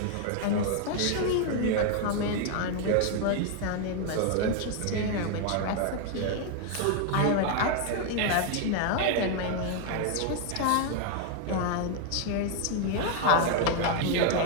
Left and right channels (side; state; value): both; different; correlation 0.00